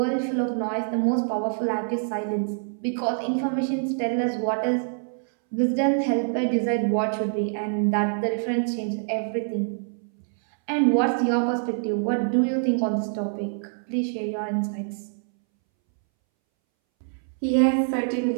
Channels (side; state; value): left; silent; 62 dB below the other